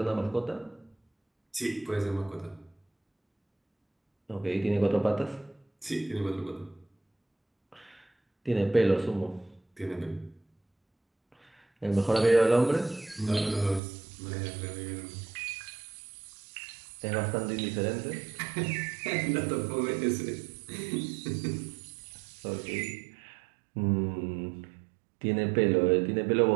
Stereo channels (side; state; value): left; drops out; at 13.8 s